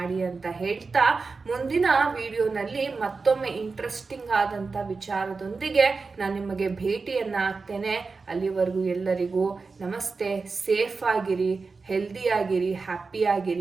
ಅಂತ ಹೇಳ್ತಾ, ಮುಂದಿನ ವಿಡಿಯೋನಲ್ಲಿ ಮತ್ತೊಮ್ಮೆ ಇಂಟ್ರೆಸ್ಟಿಂಗ್ ಆದಂಥ ವಿಚಾರದೊಂದಿಗೆ ನಾನು ನಿಮಗೆ ಭೇಟಿಯನ್ನು ಆಗ್ತೇನೆ. ಅಲ್ಲಿವರೆಗೂ ಎಲ್ಲರಿಗೂ ನಮಸ್ತೆ. ಸೇಫ್ ಆಗಿರಿ, ಹೆಲ್ದಿ ಆಗಿರಿ, ಹ್ಯಾಪಿ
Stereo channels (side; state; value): left; quieter; 4.4 dB